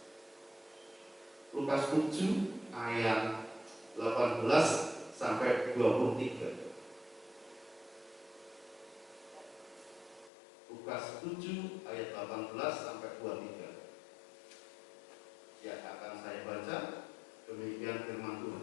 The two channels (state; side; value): drops out; right; at 10.3 s